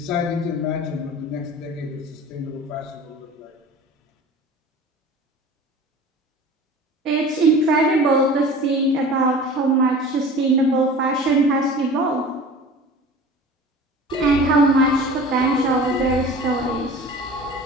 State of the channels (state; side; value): normal; both; correlation 0.40